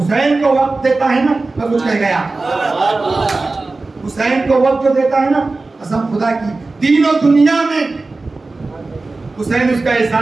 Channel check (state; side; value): quieter; left; 3.5 dB